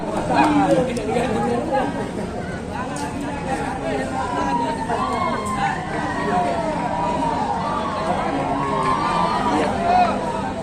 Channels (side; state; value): both; identical; correlation 1.00